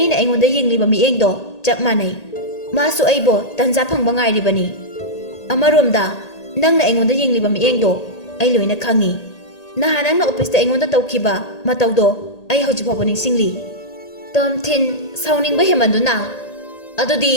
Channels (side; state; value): right; late; 1.8 ms